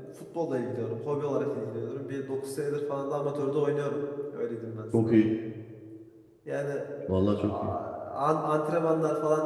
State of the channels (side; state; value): both; identical; correlation 1.00